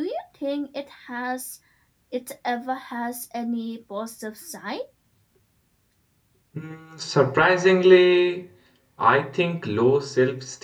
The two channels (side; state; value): both; identical; correlation 1.00